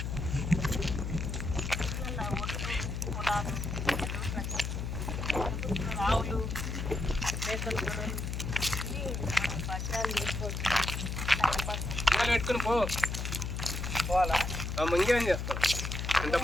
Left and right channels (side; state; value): left; noise; hum, 3 dB below the sound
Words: రావులు మేకలు గొర్రెలు బట్టాలు చేసుకోవచ్చు. పెట్టుకుని పోవాలా ఇంకేం చేస్తాం